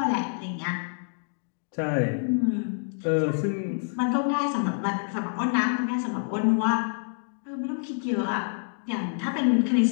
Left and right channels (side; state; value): right; silent; digital silence